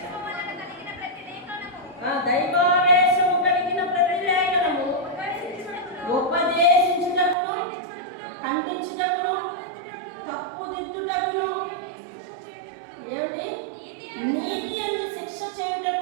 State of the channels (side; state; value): left; drops out; at 7.4 s